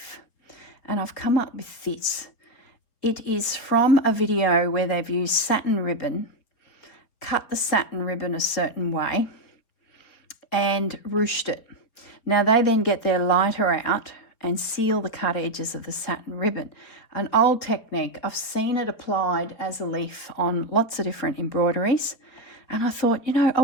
and I've come up with this. It is from a video where they've used satin ribbon, cut the satin ribbon a certain way and ruched it. Now they then get their lighter out and seal the cut edges of the satin ribbon. An old technique. I've seen it applied as a leaf on lots of different embroideries, and I thought, you know, I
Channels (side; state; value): right; late; 4.2 ms